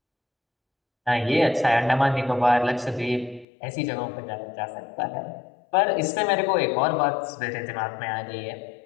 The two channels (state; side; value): drops out; right; at 3.5 s